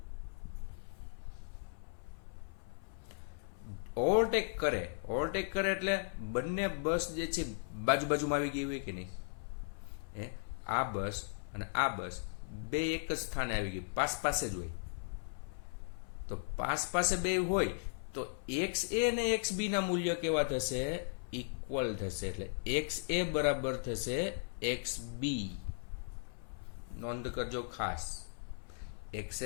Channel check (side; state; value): right; silent; 53 dB below the other